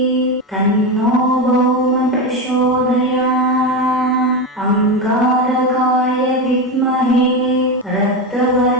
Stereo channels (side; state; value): both; normal; correlation 0.16